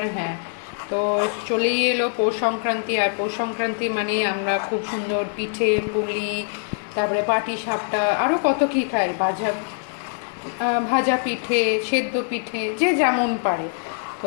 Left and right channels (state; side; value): silent; right; 63 dB below the other